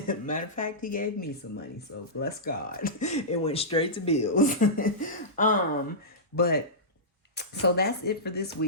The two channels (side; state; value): both; normal; correlation -0.16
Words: Matter of fact, he gave me some money, so bless God. It went straight to bills. But so that's it for this